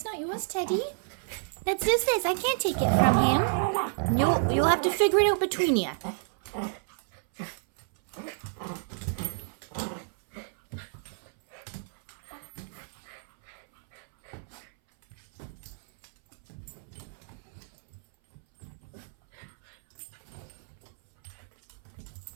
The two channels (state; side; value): silent; left; 58 dB below the other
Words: not yours, Teddy. That's Zeus's. I can't take it from him. You'll have to figure it out between you.